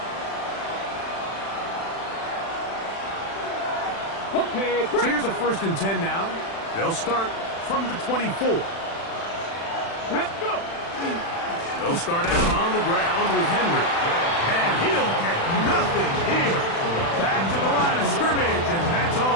Okay, So here's a first and 10 now. They'll start from the 24. let's go. They'll start out on the ground with Henry. And he'll get nothing here. Back to the line of scrimmage, and that's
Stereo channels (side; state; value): right; late; 36 ms